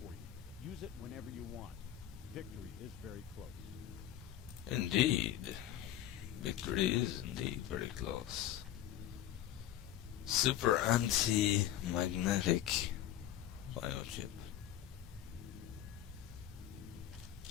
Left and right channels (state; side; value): quieter; right; 11.9 dB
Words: you. Use it whenever you want. Victory is very close. Indeed. Victory is indeed very close. Super anti-magnetic biochip.